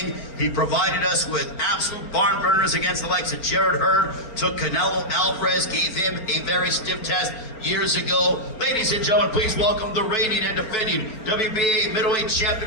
He provided us with absolute barn burners against the likes of Jared Hurd, took Canelo Alvarez, gave him a very stiff test years ago. Ladies and gentlemen, please welcome the reigning and defending WBA middleweight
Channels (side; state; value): right; late; 4.4 ms